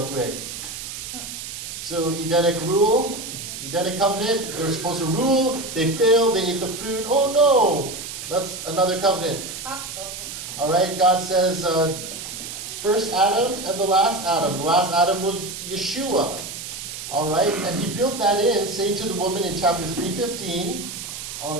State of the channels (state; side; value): noise; right; hiss, 9 dB below the sound